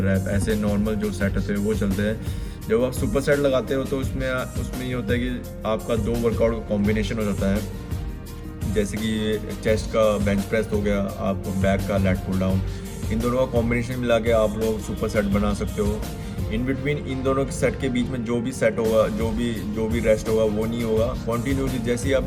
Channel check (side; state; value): both; identical; correlation 1.00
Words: रैप ऐसे नॉर्मल जो सेट होते हैं वो चलते हैं। जब आप सुपर सेट लगाते हो तो उसमें उसमें ये होता है कि आपका दो वर्कआउट का कॉम्बिनेशन हो जाता है। जैसे कि चेस्ट का बेंच प्रेस हो गया, आप बैक का लेट पुल डाउन, इन दोनों का कॉम्बिनेशन मिला के आप लोग सुपर सेट बना सकते हो। इन बिटवीन इन दोनों के सेट के बीच में जो भी सेट होगा, जो भी रेस्ट होगा वो नहीं होगा। कॉन्टीन्यूसली जैसे ही